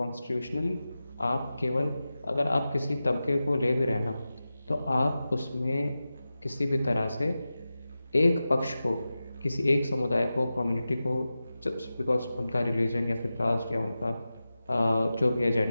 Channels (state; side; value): inverted; both; correlation -0.94